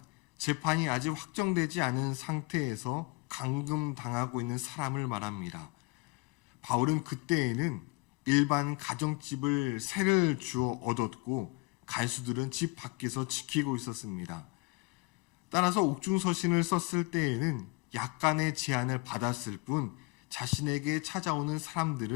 재판이 아직 확정되지 않은 상태에서 감금당하고 있는 사람을 말합니다. 바울은 그때에는 일반 가정집을 세를 주어 얻었고 간수들은 집 밖에서 지키고 있었습니다. 따라서 옥중서신을 썼을 때에는 약간의 제한을 받았을 뿐 자신에게 찾아오는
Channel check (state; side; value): quieter; right; 26.6 dB